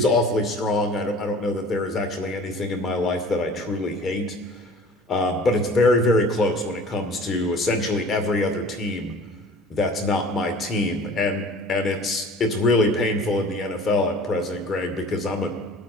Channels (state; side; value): normal; both; correlation 0.45